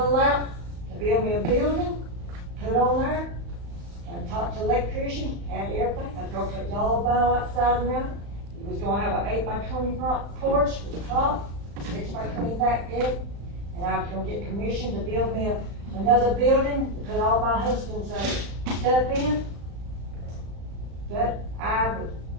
to build me a building, put on there, and talk to the electrician, and everything. I was gonna put yellow vinyl outside around it. It was gonna have an 8x20 porch with the top, 6x20 back deck, and I was gonna get permission to build me another building to put all my husband's stuff in. But I was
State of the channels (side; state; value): left; late; 35 ms